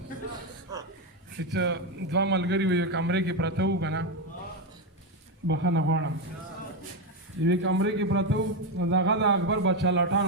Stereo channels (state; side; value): normal; both; correlation 0.09